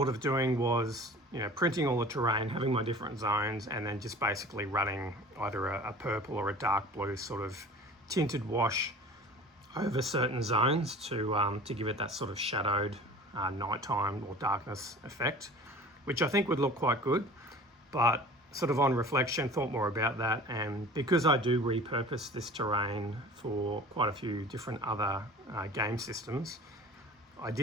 of doing was printing all the terrain, having my different zones, and then just basically running either a purple or a dark blue sort of tinted wash over certain zones to give it that sort of shadowed nighttime or darkness effect. which I think would look quite good, but sort of on reflection, thought more about that. And because I do repurpose this terrain for quite a few different other game systems, I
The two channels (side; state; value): both; normal; correlation 0.42